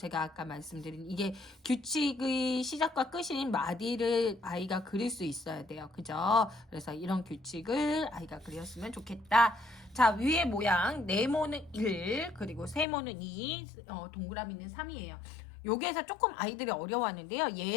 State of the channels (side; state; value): right; drops out; at 12.9 s